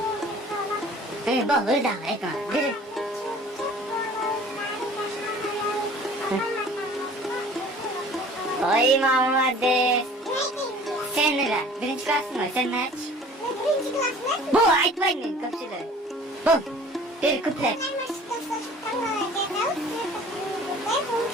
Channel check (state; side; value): normal; both; correlation 0.48